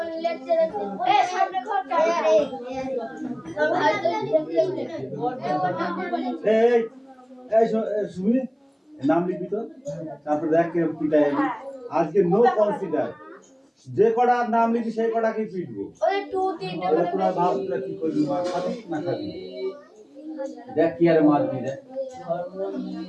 লেকচার সামনে ঘর তোর ভাই সুমি নাম লিখবি তো তারপর দেখ কিরকম পিটাই আজকে নো কনসিডার যে কটা নাম লিখবি সেই কটাকে পিটবো ওই 2-3 টা তোরা ভাব তোরা কি করবি মার খাবি না খাবি দেখ কি আর মারবি দেখ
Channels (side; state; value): both; identical; correlation 1.00